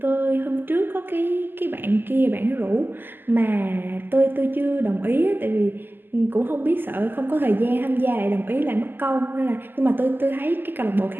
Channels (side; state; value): left; late; 0.094 ms